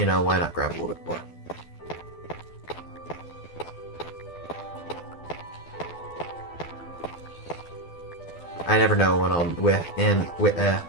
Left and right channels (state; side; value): late; right; 12 ms